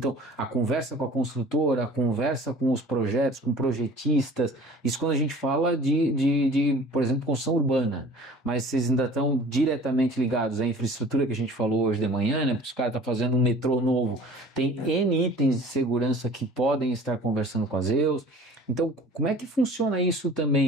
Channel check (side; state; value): both; normal; correlation 0.45